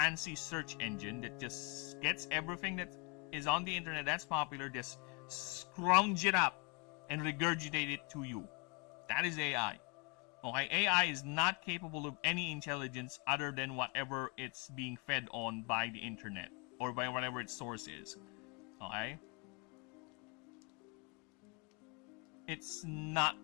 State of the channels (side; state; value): right; quieter; 30.4 dB